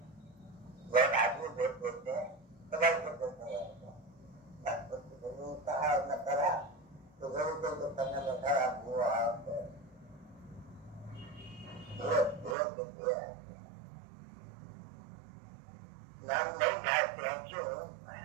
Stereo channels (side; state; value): left; drops out; at 12.6 s